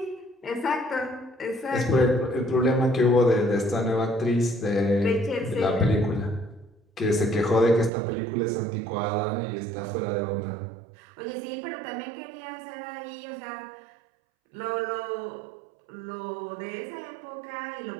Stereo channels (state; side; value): drops out; left; at 7.9 s